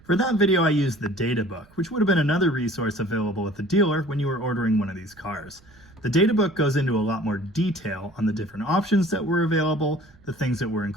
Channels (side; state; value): right; noise; rumble, 28 dB below the sound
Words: For that video, I used the data book, which would have been another resource available at the dealer when you were ordering one of these cars. The data book goes into a lot more detail on the different options that were available, the things that were